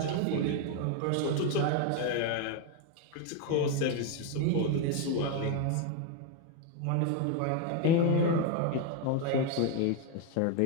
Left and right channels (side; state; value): both; different; correlation 0.01